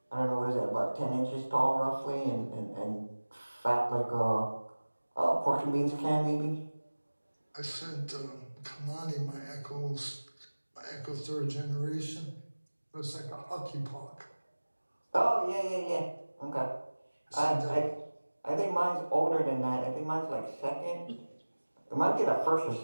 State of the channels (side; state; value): both; inverted; correlation -1.00